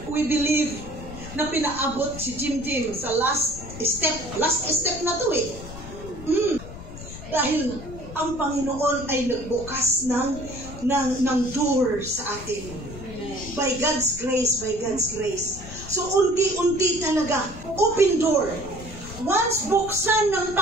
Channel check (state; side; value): noise; left; rumble, 13 dB below the sound